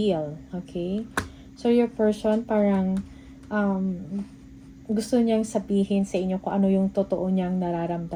Okay? So, your person parang gusto niyang sabihin sa inyo kung ano yung totoo niyang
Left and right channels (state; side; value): identical; both; correlation 1.00